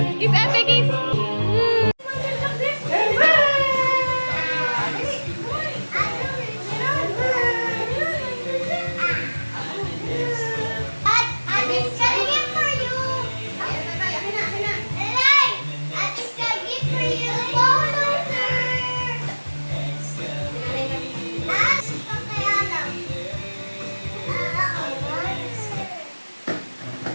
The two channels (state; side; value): inverted; both; correlation -1.00